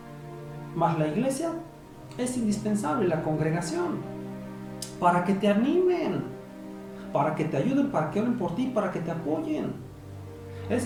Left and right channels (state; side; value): identical; both; correlation 1.00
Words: Mas la iglesia es indispensable, la congregación, para que te animen, para que te ayuden, para que oren por ti, para que te apoyen. Es